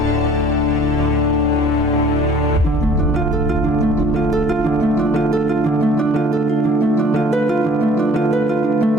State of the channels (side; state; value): both; normal; correlation 0.52